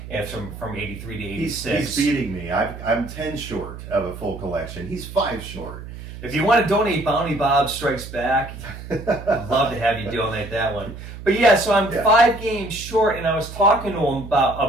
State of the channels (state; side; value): noise; right; hum, 12 dB below the sound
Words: and from 83 to 86. He's beating me. I'm 10 short of a full collection. He's 5 short. If you want to donate Bounty Bob Strikes Back, I'd love to have you donate that one. But yeah, so I'm 5 games short, and I was talking to him